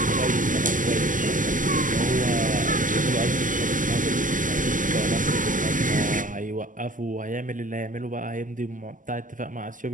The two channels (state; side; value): late; left; 0.38 ms